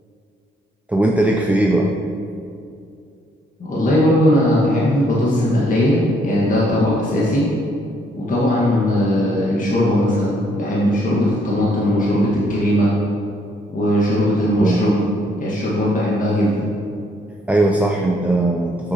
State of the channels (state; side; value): normal; both; correlation 0.69